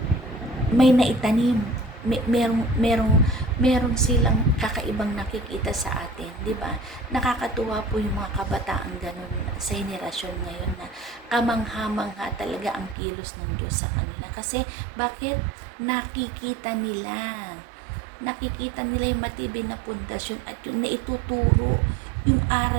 may naitanim, merong silang kakaibang nakikita sa atin, di ba? Nakakatuwa po yung mga kabataan ganun sa henerasyon ngayon, na kamangha-mangha talaga ang kilos ng Diyos sa kanila. Kasi bakit? Nakikita nila yung matibay na pundasyon at yun na ituturo yung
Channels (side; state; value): left; drops out; at 13.0 s